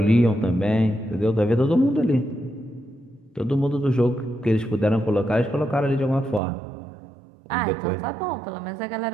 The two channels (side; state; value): left; drops out; at 6.4 s